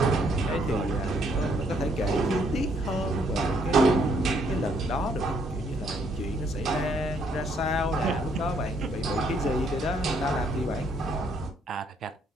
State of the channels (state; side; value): normal; both; correlation 0.68